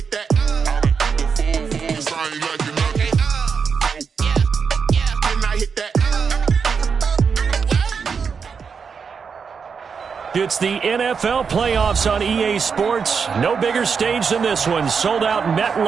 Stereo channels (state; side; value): quieter; left; 5.9 dB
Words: that. Sorry, like you know. Okay, yeah, and I hit that. It's the NFL playoffs on EA Sports. No bigger stage than this one. Sold out